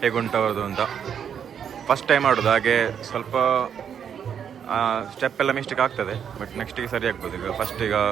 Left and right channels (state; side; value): quieter; left; 8.1 dB